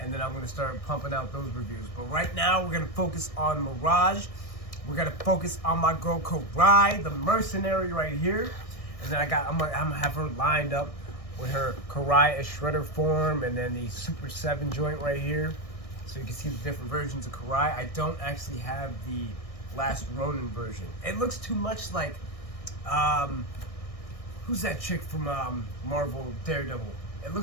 then I'm going to start pumping out those reviews. But right now, we're going to focus on Mirage. We're gonna focus on my girl Karai, the Mercenary right here, and then I'm gonna have her lined up with her Karai as Shredder form, and then the Super 7 joint right here, so you can see the different versions of Karai. I don't actually have the last Ronin version. It looks too much like who's that chick from Marvel Daredevil? It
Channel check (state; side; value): late; right; 1.6 ms